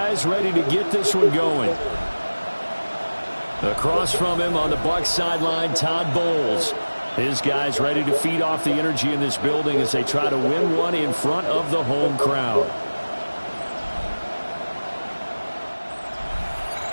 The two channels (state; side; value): inverted; both; correlation -1.00